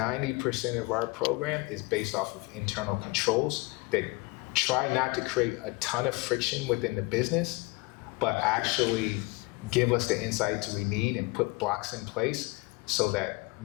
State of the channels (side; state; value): right; quieter; 25.4 dB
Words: of our program is based off of internal controls that try not to create a ton of friction within the business, but actually give us the insights we need and put blocks in place so that